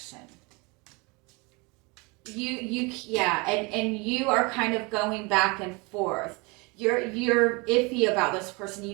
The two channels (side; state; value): left; quieter; 27.7 dB